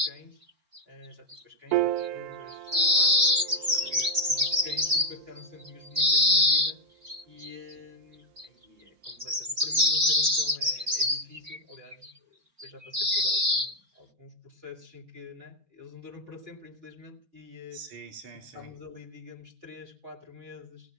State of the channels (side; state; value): left; late; 4.3 ms